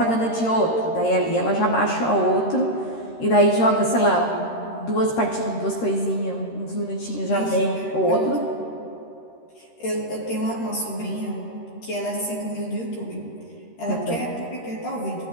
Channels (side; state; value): right; late; 13 ms